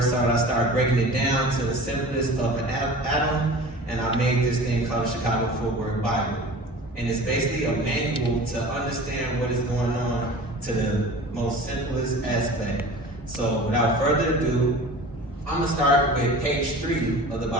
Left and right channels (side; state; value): both; normal; correlation 0.39